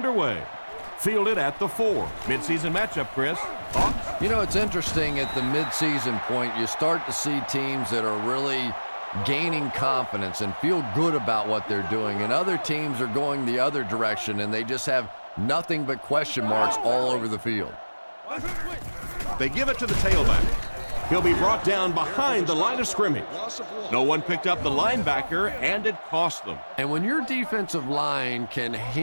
Fielded at the 4. Midseason matchup, Chris. Thoughts? You know, it's interesting at the midseason point, you start to see teams that are really gaining confidence and feel good about what they're doing, and other teams are going the other direction, and they just have nothing but question marks all over the field. They give it to the tailback. He'll be brought down behind the line of scrimmage. No one picked up the linebacker, and it cost them. And when your defensive line can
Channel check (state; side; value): inverted; both; correlation -1.00